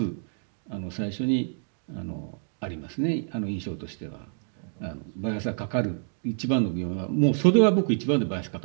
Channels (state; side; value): silent; left; digital silence